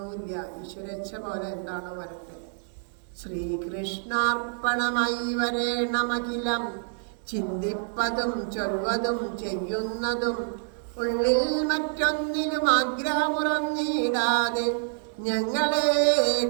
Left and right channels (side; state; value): left; silent; digital silence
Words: ഈശ്വരേച്ഛ പോലെ എന്താണോ വരട്ടെ. ശ്രീകൃഷ്ണാർപ്പണമായി വരേണമഖിലം, ചിന്തിപ്പതും ചൊൽവതും ചെയ്യുന്നതും ഉള്ളിൽ മറ്റൊന്നിനും ആഗ്രഹമുറന്നിടാതെ ഞങ്ങളെ